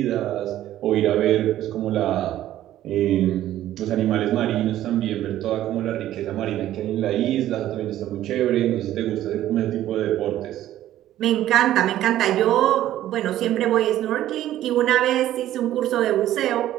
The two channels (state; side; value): quieter; left; 13.1 dB